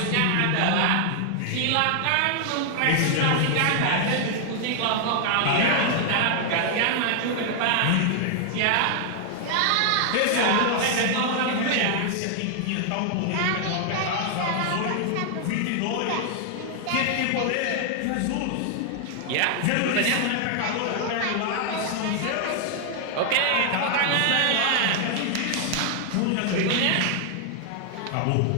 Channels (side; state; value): both; different; correlation 0.00